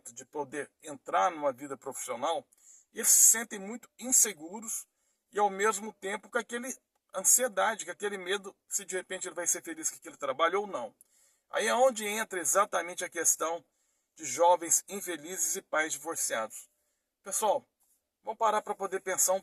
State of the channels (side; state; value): both; identical; correlation 1.00